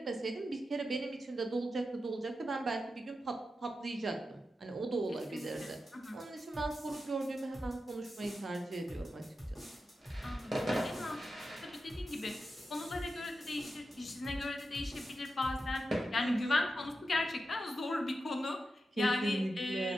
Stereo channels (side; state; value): both; normal; correlation 0.90